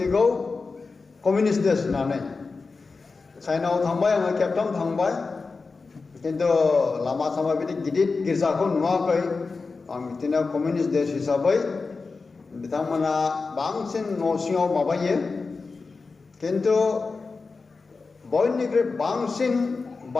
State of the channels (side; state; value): right; quieter; 4.2 dB